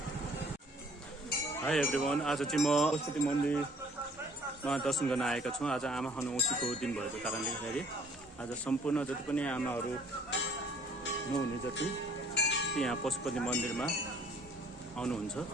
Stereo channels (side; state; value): both; normal; correlation 0.58